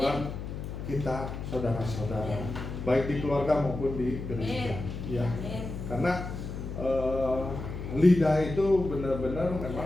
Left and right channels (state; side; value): noise; left; hum, 7 dB below the sound